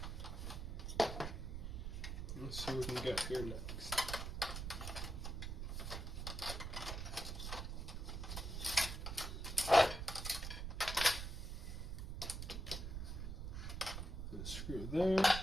let's see what we can get here next. Screw there.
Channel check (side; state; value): right; noise; rumble, 4 dB below the sound